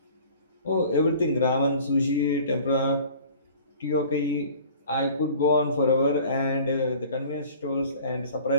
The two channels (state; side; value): inverted; both; correlation -0.47